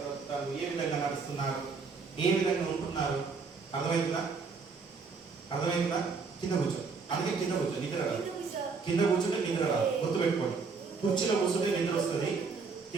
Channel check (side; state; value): left; quieter; 4.8 dB